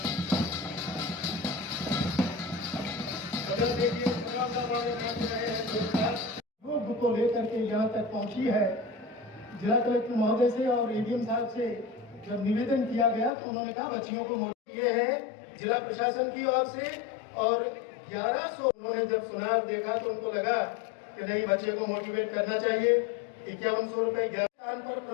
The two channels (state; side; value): drops out; right; at 13.3 s